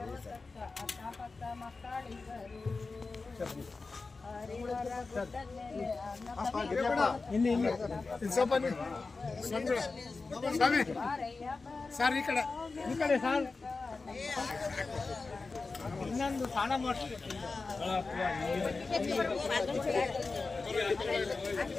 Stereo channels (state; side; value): quieter; right; 4.0 dB